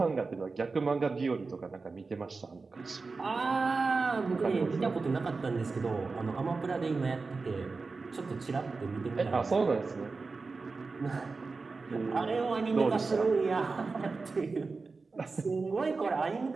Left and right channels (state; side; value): quieter; left; 4.1 dB